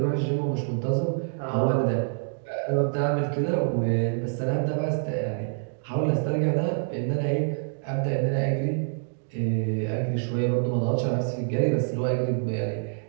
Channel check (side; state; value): left; silent; digital silence